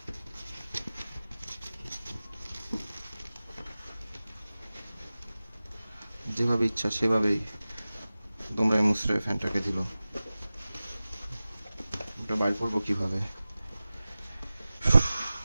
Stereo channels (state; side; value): inverted; both; correlation -0.97